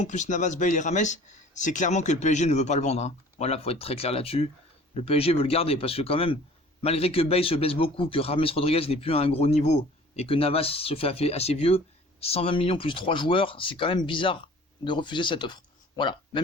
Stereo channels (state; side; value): normal; both; correlation 0.48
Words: plus Navas, Bale et Rames, c'est clairement que le PSG ne veut pas le vendre. Voilà, faut être très clair là-dessus. Le PSG veut le garder parce que quand même, malgré que Bale se blesse beaucoup, que Rames Rodriguez n'est plus à un gros niveau et que Navas se fait assez vieux, 120 millions plus 3 joueurs, c'est quand même bizarre de refuser cette offre. Voilà,